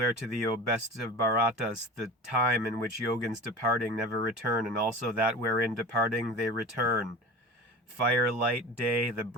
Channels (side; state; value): both; normal; correlation 0.35